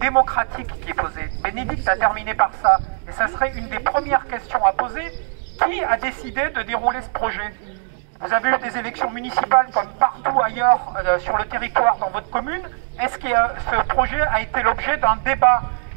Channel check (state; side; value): silent; left; digital silence